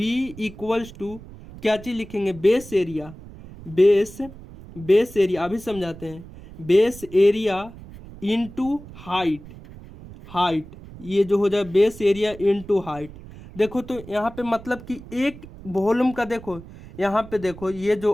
इक्वल्स टू क्या चीज़ लिखेंगे, बेस एरिया, बेस एरिया अभी समझाते हैं, बेस एरिया इनटू हाइट, ये जो हो जाए बेस एरिया इनटू हाइट। देखो तो यहाँ पे मतलब कि एक वॉल्यूम का, देखो यहाँ पे देखो ये जो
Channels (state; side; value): noise; right; rumble, 17 dB below the sound